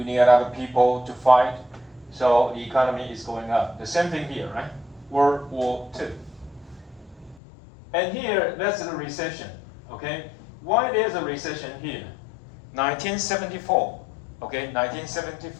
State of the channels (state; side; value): drops out; right; at 7.4 s